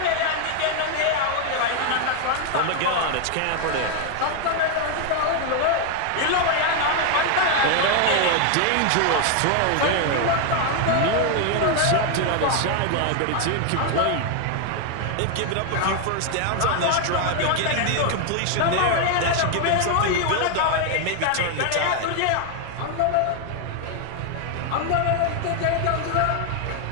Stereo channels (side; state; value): both; different; correlation 0.01